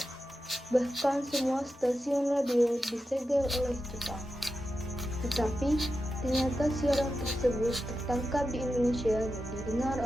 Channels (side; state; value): both; normal; correlation 0.90